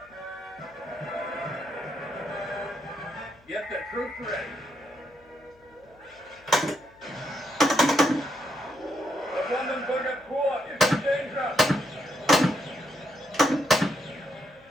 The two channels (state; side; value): noise; left; hum, 30 dB below the sound